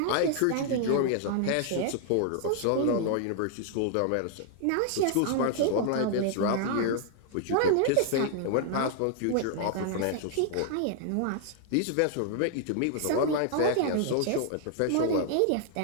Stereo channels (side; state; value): both; different; correlation 0.00